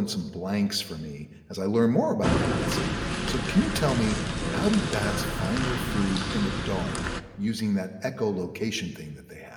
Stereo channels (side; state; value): both; identical; correlation 1.00